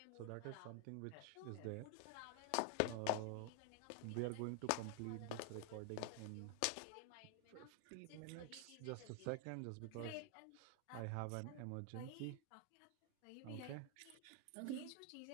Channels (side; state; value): both; different; correlation 0.00